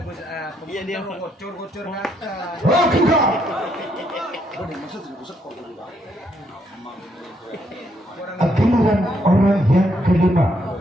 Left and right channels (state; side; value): normal; both; correlation 0.73